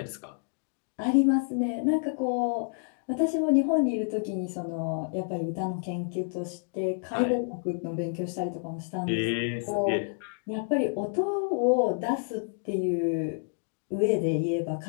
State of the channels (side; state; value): right; silent; digital silence